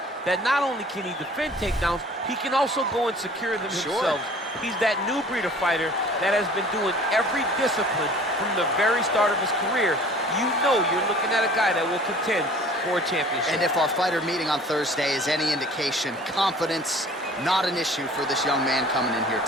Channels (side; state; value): both; normal; correlation 0.48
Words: that not only can he defend takedowns, he can also go and secure them himself. He's that new breed of fighter that has been doing every discipline from the very start of his career. You know you're looking at a guy that will contend for a championship. And if our fighter meeting on Thursday is any indication, confidence, not an issue for this young man coming in here